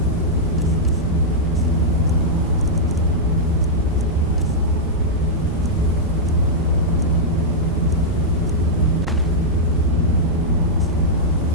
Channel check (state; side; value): noise; right; rumble, 7 dB below the sound